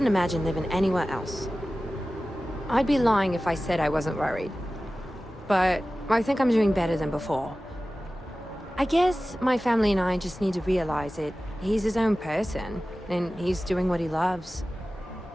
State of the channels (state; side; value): normal; both; correlation 0.96